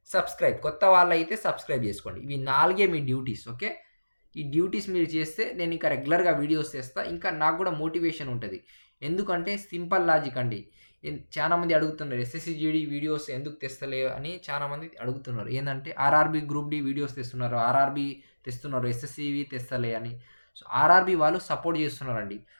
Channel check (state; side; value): inverted; both; correlation -1.00